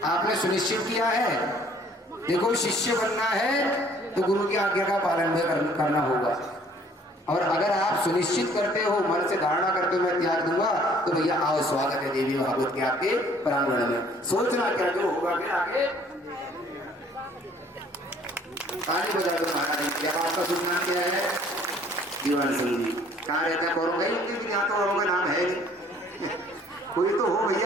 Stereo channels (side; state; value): both; normal; correlation 0.57